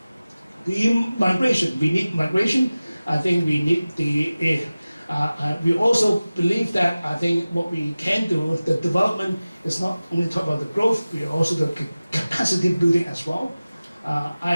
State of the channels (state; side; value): inverted; both; correlation -0.97